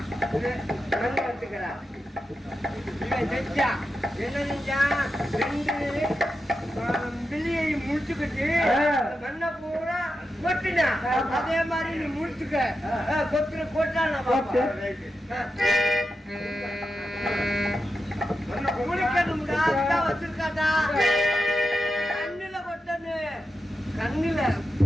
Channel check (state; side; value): normal; both; correlation 0.89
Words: பிள்ளையை முடிச்சுக்கிட்டு மண்ண பூரா கொட்டினா அதே மாதிரி நீ முடிச்சுக்க கொத்துற கொட்டா குளிக்கணும்டா வச்சிருக்காடா கண்ணுல கொட்டனு கண்ணுல